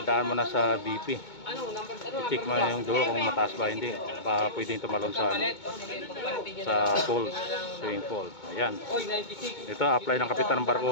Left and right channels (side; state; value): right; late; 2.2 ms